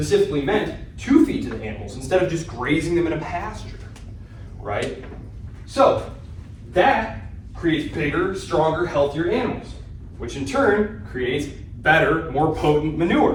meant to feed to the animals instead of just grazing them in a pasture, right? So that creates bigger, stronger, healthier animals, which in turn creates better, more potent manure,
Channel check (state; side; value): identical; both; correlation 1.00